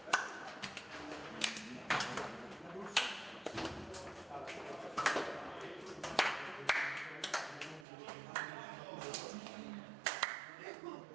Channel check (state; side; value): drops out; left; at 7.9 s